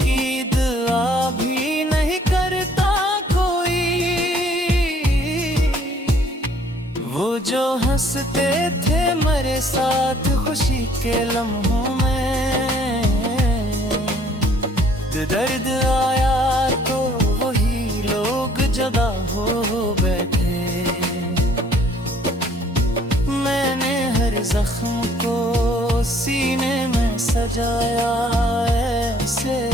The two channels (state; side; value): normal; both; correlation 0.60